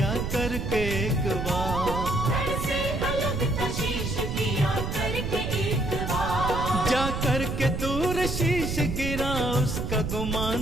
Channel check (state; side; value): noise; right; rumble, 3 dB below the sound